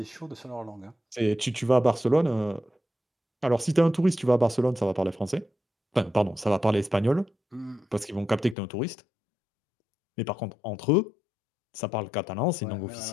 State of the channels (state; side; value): drops out; right; at 8.6 s